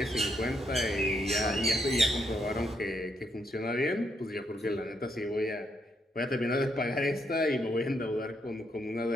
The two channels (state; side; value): normal; both; correlation 0.76